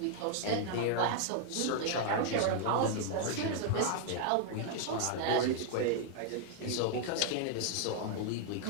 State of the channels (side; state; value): both; different; correlation -0.01